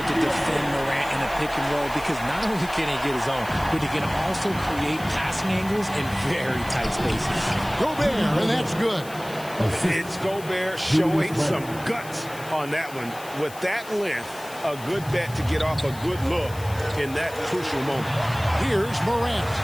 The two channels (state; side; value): noise; left; hiss, 17 dB below the sound